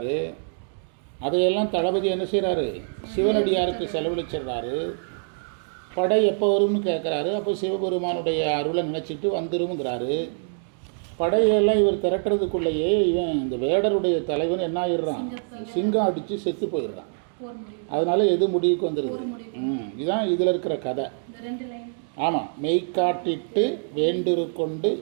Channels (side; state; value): left; silent; digital silence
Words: அதையெல்லாம் தளபதி என்ன செய்கிறாரு? சிவனடியாருக்கு செலவழிச்சிடுறாரு. படை எப்போ வரும்னு கேட்குறாரு. அப்போ சிவபெருமானுடைய அருளை நினச்சிட்டு வந்துருங்கிறாரு. படையெல்லாம் இவர் திரட்டுறதுக்குள்ளேயே இவன் இந்த வேடருடைய தலைவன் என்ன ஆயிடுறான்? சிங்கம் அடித்து செத்து போயிடுறான். அதனால் எது முடிவுக்கு வந்துடுது? இதுதான் இதில் இருக்கிற கதை. ஆமாம், மெய்காட்டிட்டு வேண்டுரு கொண்டு